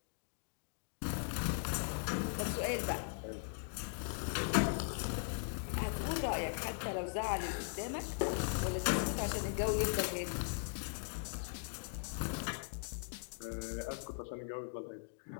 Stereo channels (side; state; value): right; silent; digital silence